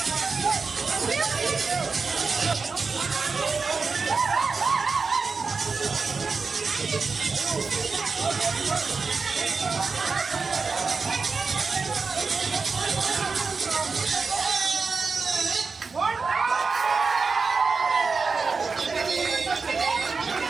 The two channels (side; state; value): left; quieter; 4.7 dB